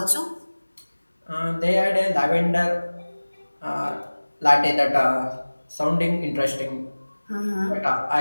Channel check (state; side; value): inverted; both; correlation -1.00